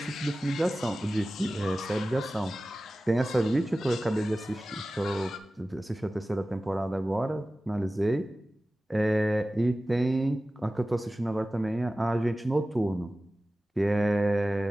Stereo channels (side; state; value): both; normal; correlation 0.96